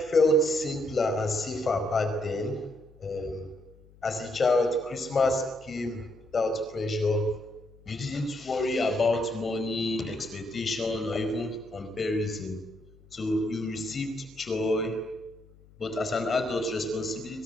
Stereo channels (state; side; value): noise; left; hum, 25 dB below the sound